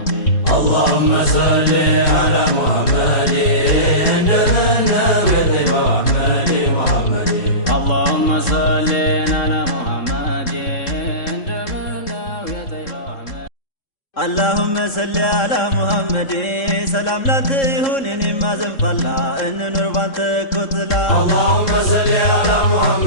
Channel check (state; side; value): late; right; 3.7 ms